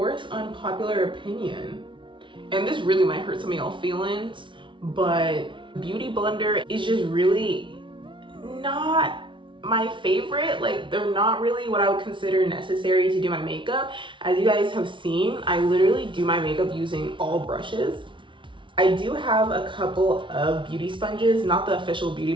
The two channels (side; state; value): left; late; 0.24 ms